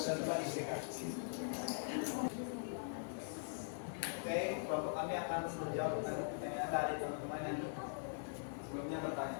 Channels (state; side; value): silent; right; digital silence